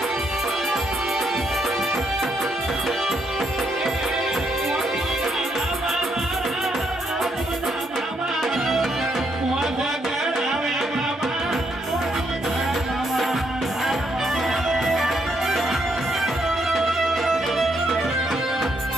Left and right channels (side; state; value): both; normal; correlation 0.75